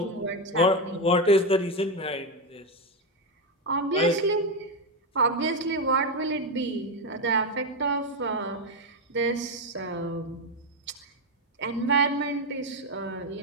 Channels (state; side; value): normal; both; correlation 0.09